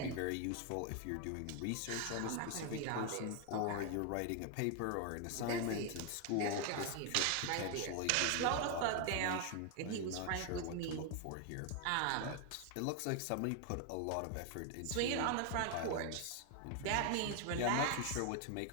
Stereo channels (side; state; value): both; different; correlation 0.01